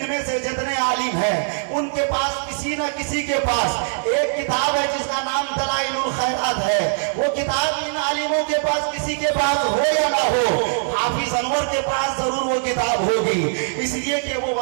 से जितने आलिम हैं उनके पास किसी न किसी के पास एक किताब है जिसका नाम दलाइलुल खैरात है। वो किताब इन आलिमों के पास किसी के पास हो या ना हो, हाफिज अनवर के पास जरूर वो किताब होगी, इसलिए कि वो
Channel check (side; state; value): left; silent; digital silence